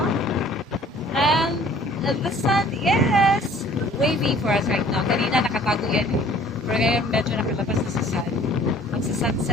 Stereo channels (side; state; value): both; normal; correlation 0.53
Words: And the sun is waving for us right now. Kanina nakatago yan. Pero ngayon medyo nakalabas na sa sun.